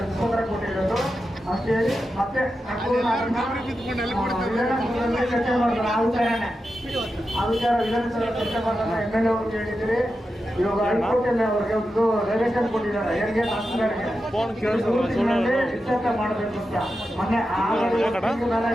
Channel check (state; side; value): normal; both; correlation 0.90